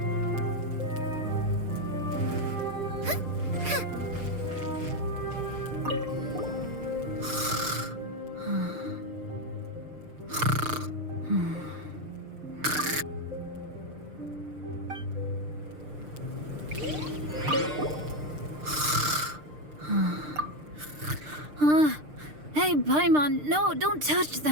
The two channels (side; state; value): left; late; 6.6 ms